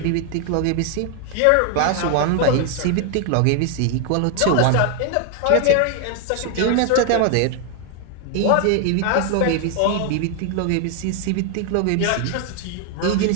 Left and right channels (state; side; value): different; both; correlation 0.00